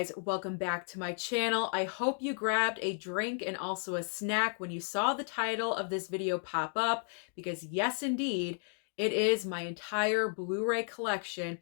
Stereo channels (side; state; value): right; silent; 55 dB below the other